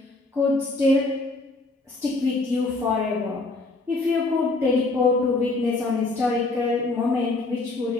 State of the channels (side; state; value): right; quieter; 3.2 dB